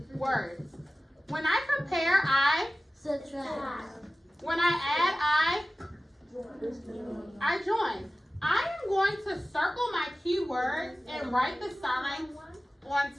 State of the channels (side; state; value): both; normal; correlation 0.97